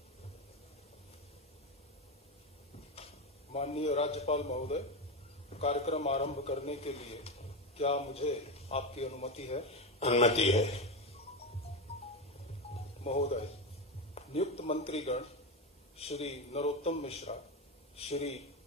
माननीय राज्यपाल महोदय, कार्यक्रम आरंभ करने के लिए क्या मुझे आपकी अनुमति है? अनुमति है। महोदय, नियुक्त मंत्रीगण श्री नरोत्तम मिश्रा, श्री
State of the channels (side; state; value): both; normal; correlation 0.15